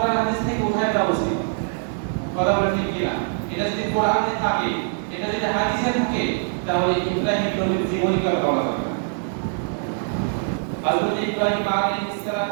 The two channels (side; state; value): left; silent; digital silence